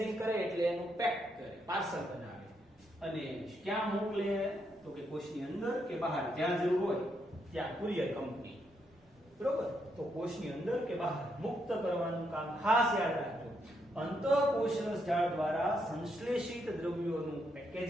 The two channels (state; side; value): normal; both; correlation 0.78